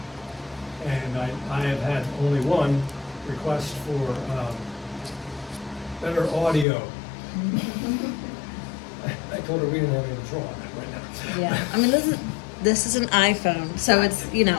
And I have had only one request for better audio. I told her we didn't have any control on that right now. Yeah, I mean, this is an iPhone, so it's, and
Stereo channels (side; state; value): right; drops out; at 6.7 s